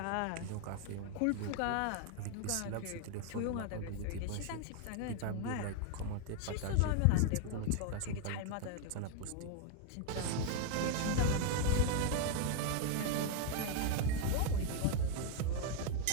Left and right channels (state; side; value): different; both; correlation 0.00